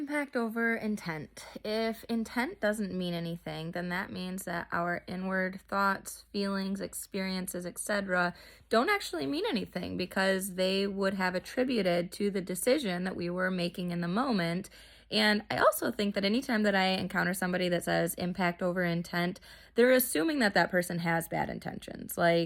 over intent. If intent doesn't mean anything, then that means that our inward thoughts, feelings, experiences, etc. don't actually mean anything because they would have attributed to the decision that we were making in the moment. And I also think that anytime that I encounter somebody that says impact over intent, they're assuming that that person has bad intentions.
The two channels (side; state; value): both; identical; correlation 1.00